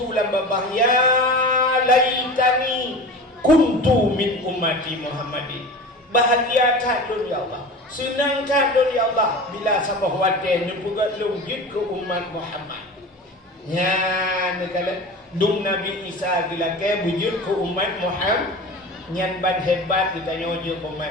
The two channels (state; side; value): normal; both; correlation 0.33